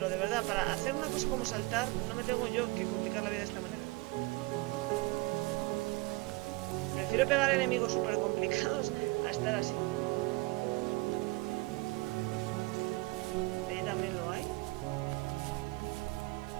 de verdad, para hacer una cosa como saltar, no me tengo yo que complicar la vida de esta manera. Prefiero pegar enemigos súper complicados a estar así. Ahí también lo hay.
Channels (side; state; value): left; quieter; 23.8 dB